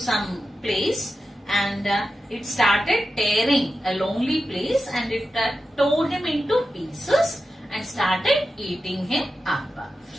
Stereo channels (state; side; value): normal; both; correlation 0.91